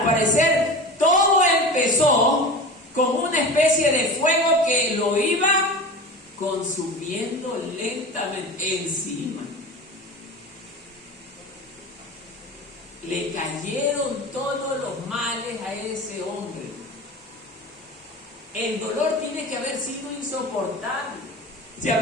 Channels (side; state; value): both; normal; correlation 0.32